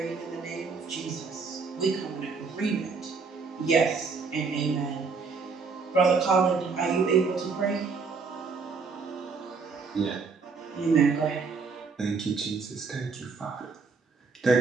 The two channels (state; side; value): quieter; left; 4.8 dB